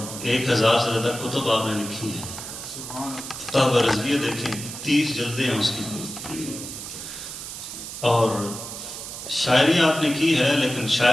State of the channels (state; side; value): noise; right; hiss, 9 dB below the sound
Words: 1000 سے زیادہ کتب آپ نے لکھی ہے۔ فتح رضویہ دیکھیں، 30 جلدیں ہیں اس کی، اور شاعری آپ نے کی ہے، لیکن